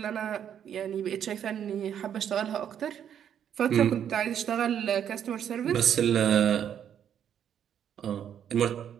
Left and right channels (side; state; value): left; quieter; 9.2 dB